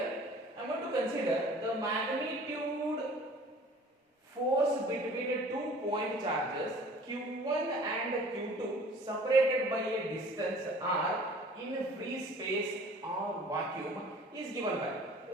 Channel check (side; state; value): both; normal; correlation 0.48